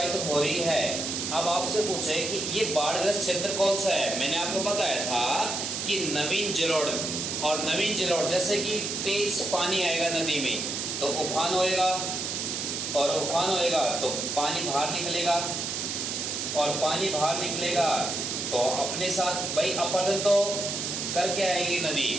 हो रही है। अब आपसे पूछे कि ये बाढ़ग्रस्त क्षेत्र कौन सा है? मैंने आपको बताया था कि नवीन जलोढ़, और नवीन जलोढ़ जैसे कि तेज पानी आएगा नदी में तो उफान होएगा, और उफान होएगा तो पानी बाहर निकलेगा, और पानी बाहर निकलेगा तो अपने साथ भाई अपरदन तो करके आएगी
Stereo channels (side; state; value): right; noise; hiss, 3 dB below the sound